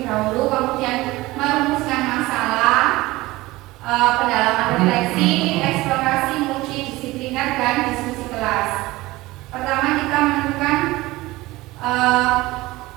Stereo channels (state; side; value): quieter; left; 19.4 dB